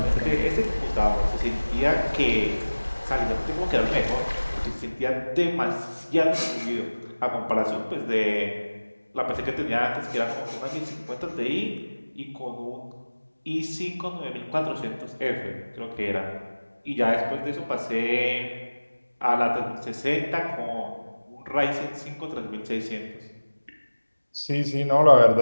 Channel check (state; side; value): inverted; both; correlation -1.00